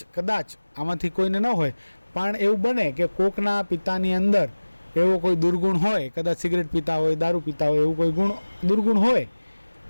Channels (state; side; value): inverted; both; correlation -1.00